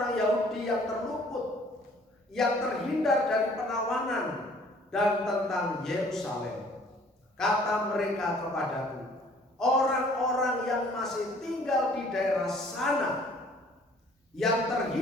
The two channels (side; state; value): both; normal; correlation 0.56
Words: Yahudi yang terluput, yang terhindar dari penawanan, dan tentang Yerusalem. Kata mereka kepadaku, orang-orang yang masih tinggal di daerah sana, yang